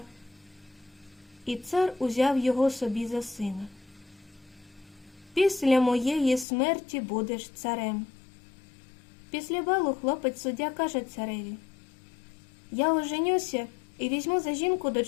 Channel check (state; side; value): drops out; right; at 6.5 s